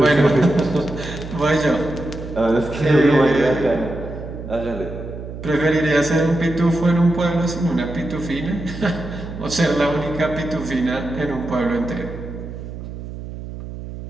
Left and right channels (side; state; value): right; noise; hum, 10 dB below the sound